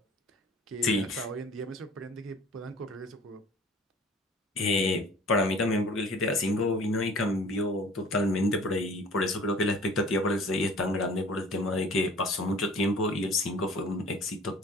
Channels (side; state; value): both; normal; correlation 0.48